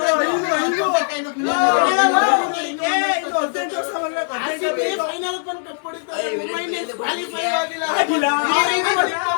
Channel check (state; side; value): silent; right; digital silence